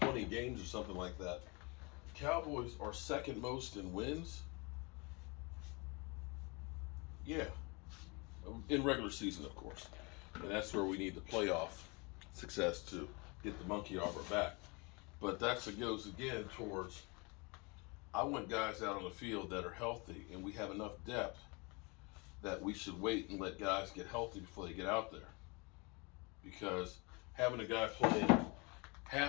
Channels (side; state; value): right; quieter; 28.9 dB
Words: games or something like that, the Cowboys are second most in wins. Yeah. In regular season, of course. And that's where we need the playoff success to get the monkey off our back. But that goes again towards, I want guys out on the field that are healthy, and we have enough depth that we should wait and let guys get healthy before they get out there. Because having a guy playing